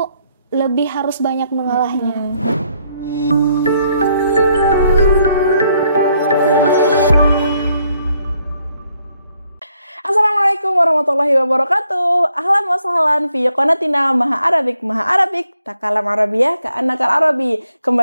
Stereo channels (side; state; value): both; inverted; correlation -0.72